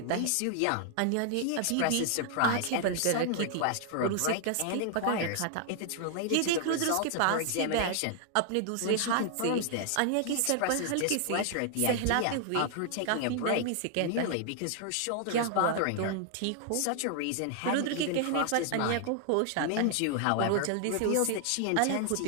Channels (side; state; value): both; different; correlation 0.00